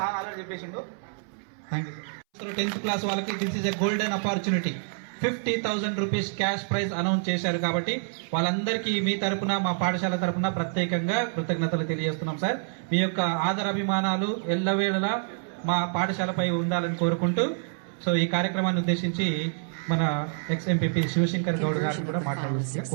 సార్ ఆల్రెడీ చెప్పేసిండు. Thank you sir. 10th class వాళ్ళకి this is a golden opportunity. 50,000 rupees cash prize announce చేశారు కాబట్టి వాళ్ళందరికీ మీ తరపున, మా పాఠశాల తరపున ప్రత్యేకంగా కృతజ్ఞతలు తెలియజేస్తున్నాం సార్. మీ యొక్క ఆదరాభిమానాలు ఎల్లవేళలా మా పాఠశాలపై ఉండాలని కోరుకుంటూ, సో ఈ కార్యక్రమాన్ని ఉద్దేశించి మన ఎక్స్ ఎంపీపీ శివశంకర్ గౌడ్ గారు కూడా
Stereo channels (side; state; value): left; silent; 60 dB below the other